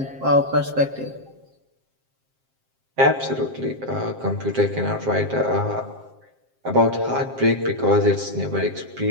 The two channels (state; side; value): late; left; 7.5 ms